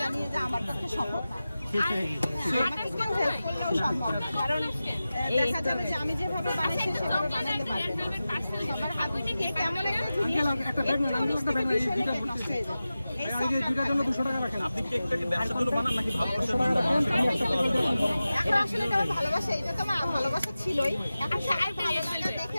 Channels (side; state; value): both; inverted; correlation -0.95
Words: জানি যে আমার পক্ষে সম্ভব না। আমাকে কেউ হেল্প করলেও সম্ভব না, কারণ দেখা যাবে যে আমি যেভাবে বানাইছি সেভাবে বানাতে পারবে না। সবার হাত থেকে কেমন একটা জিনিস নষ্ট হয়ে যাবে। দুটার জন্য 200 টাকা রাখেন। আপনি কেকটাকে ব্যবসার জন্য বানান নাকি ভালোবাসার জন্য? এখন আসলে এটা আমার ভালোবাসা, এটা তো আমার ভালোবাসা ছিলই। এখন সবাই ভালোবাসা দেখে